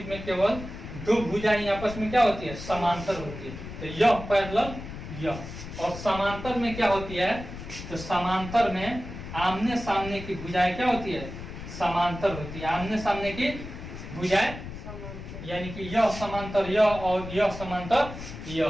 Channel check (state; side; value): noise; left; rumble, 10 dB below the sound